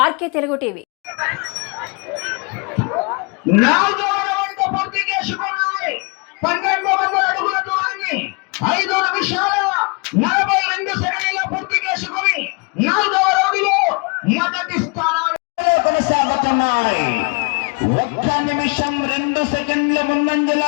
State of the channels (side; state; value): right; quieter; 32.4 dB